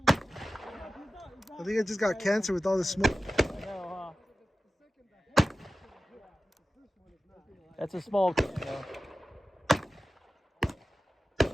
I think I just got cancer with all the smoke. I know, huh? That's a small can, though.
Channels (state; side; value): normal; both; correlation 0.94